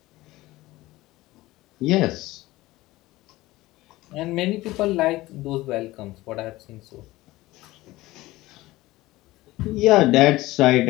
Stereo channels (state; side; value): quieter; right; 18.5 dB